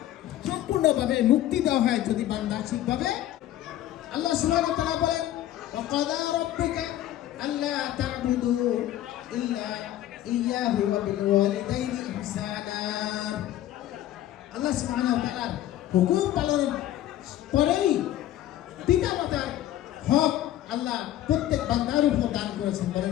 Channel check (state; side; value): quieter; right; 13.2 dB